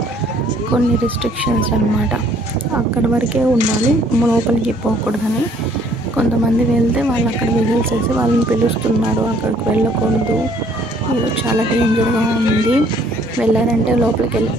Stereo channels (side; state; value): both; normal; correlation 0.61